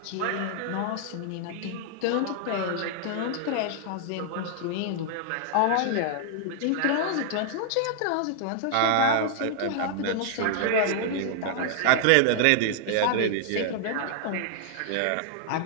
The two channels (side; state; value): both; different; correlation -0.01